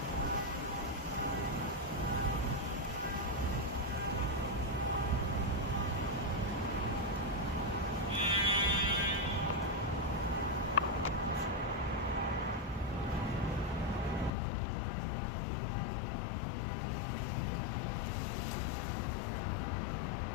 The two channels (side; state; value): right; drops out; at 14.3 s